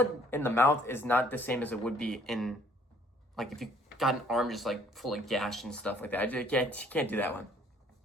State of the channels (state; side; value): normal; both; correlation 0.60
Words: in the mouth is not the same as it would be in, like, if you got an arm just like full of gash and stuff like that. I can't do that one.